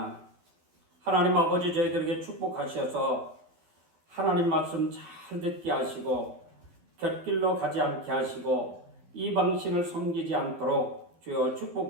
하나님 아버지 저희들에게 축복하셔서 하나님 말씀 잘 듣게 하시고 곁길로 가지 않게 하시고 이방신을 섬기지 않도록 주여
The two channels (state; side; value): late; left; 12 ms